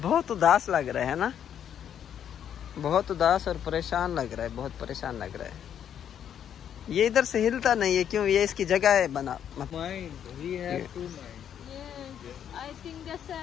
उदास लग रहा है ना, बहुत उदास और परेशान लग रहा है, बहुत परेशान लग रहा है। ये इधर से हिलता नहीं है, क्यों? ये इसकी जगह है बना। Mind, we have to mind. Yes, I think that's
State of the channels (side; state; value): right; quieter; 9.2 dB